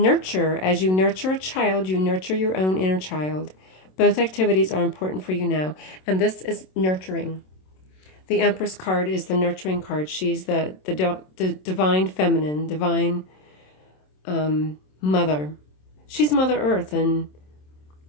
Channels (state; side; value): late; right; 27 ms